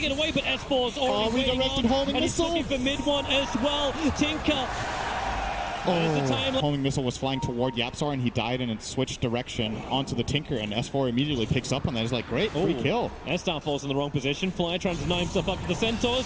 away, but S4's already redirected homing and he's missile. looking for Mid1 as well. Tinker. Homing missile was flying toward YapzOr, and he died and it switched direction onto the Tinker, and S4 immediately picks up on that. He's like, great, free kill. And Star falls in the wrong position. Fly trying to deny himself up to the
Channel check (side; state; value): both; identical; correlation 1.00